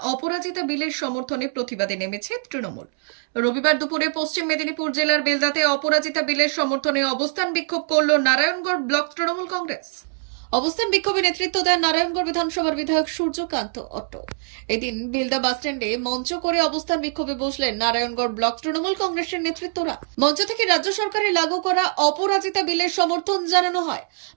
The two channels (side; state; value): left; silent; 63 dB below the other